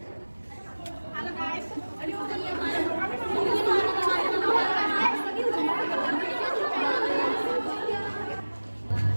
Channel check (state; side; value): inverted; both; correlation -1.00